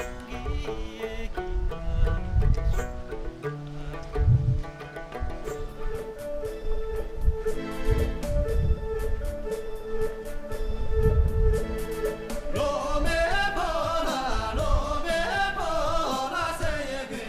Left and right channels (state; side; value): identical; both; correlation 1.00